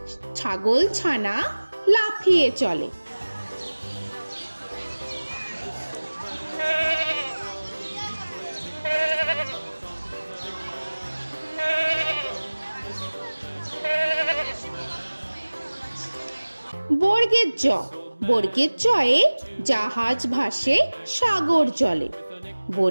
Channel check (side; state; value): both; inverted; correlation -1.00